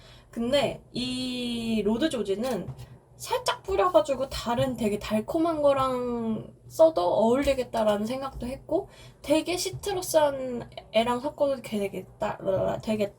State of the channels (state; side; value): identical; both; correlation 1.00